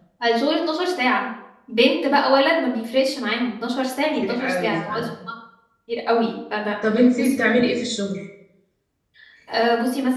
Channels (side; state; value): both; identical; correlation 1.00